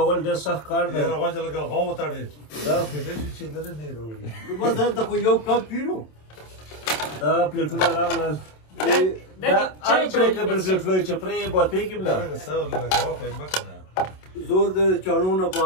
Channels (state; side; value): late; right; 27 ms